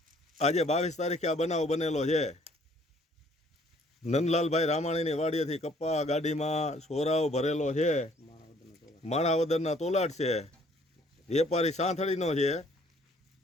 આજે 22 તારીખે આ બનાવ બનેલો છે। નંદલાલભાઈ રામાણીની વાડીએથી કપા ગાડીમાં સોરાવ ભરેલો છે, માણાવદરના તોલાટ છે, વેપારી સાંથળીનો છે,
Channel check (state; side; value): normal; both; correlation 0.60